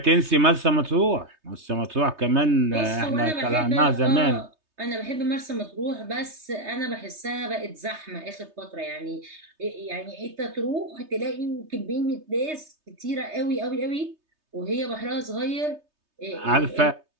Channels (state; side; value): late; left; 3.3 ms